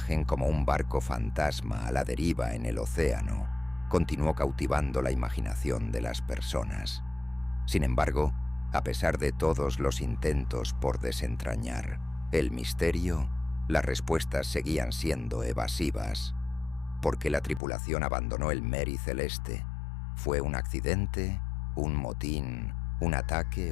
como un barco fantasma a la deriva en el océano continuó cautivando la imaginación de las personas. Sin embargo, a pesar de todos los intentos por desentrañar el misterio, las respuestas seguían siendo evasivas. ¿Por qué la tripulación abandonó el Mary Celeste? ¿Fue un accidente, un motín, un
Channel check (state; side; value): drops out; right; at 17.6 s